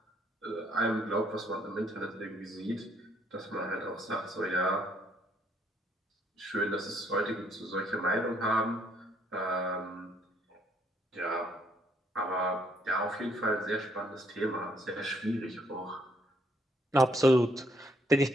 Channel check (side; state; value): both; normal; correlation 0.69